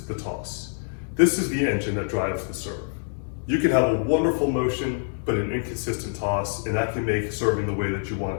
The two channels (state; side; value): silent; right; 61 dB below the other